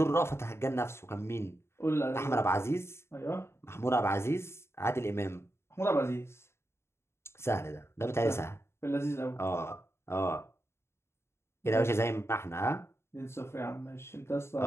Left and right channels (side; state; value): right; late; 0.12 ms